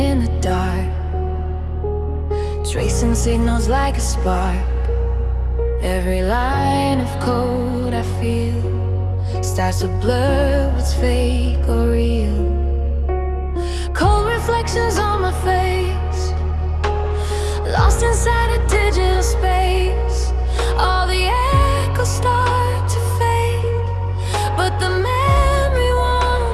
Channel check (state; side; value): identical; both; correlation 1.00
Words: the dark, tracing signals like a spark. Every line of code I feel starts to blur what's fake or real. Cold reflections on my face, lost inside a digital space. All the echoes start to fade, but the memory